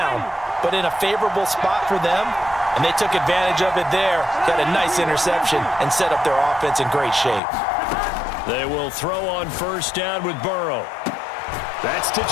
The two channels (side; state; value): right; drops out; at 7.4 s